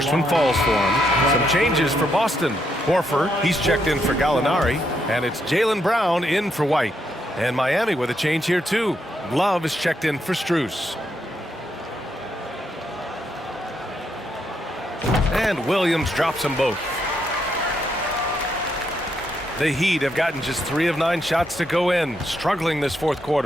one falls for him. Some changes for Boston. Horford, he's checked in for Gallinari, and it's Jaylen Brown in for White. And Miami with a change here too. Love is checked in for Strus. And Williams drops them both. The Heat have gotten just 3 of 9 shots to go in, struggling this fourth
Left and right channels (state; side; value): normal; both; correlation 0.78